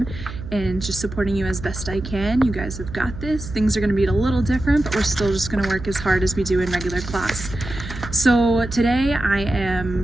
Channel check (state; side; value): noise; right; hum, 10 dB below the sound